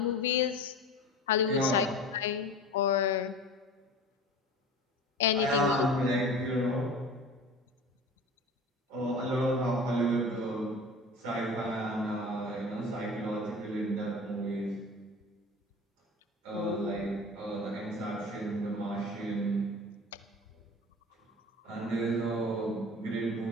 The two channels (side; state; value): both; normal; correlation 0.37